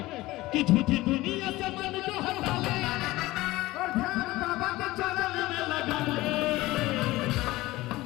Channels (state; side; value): quieter; right; 18.6 dB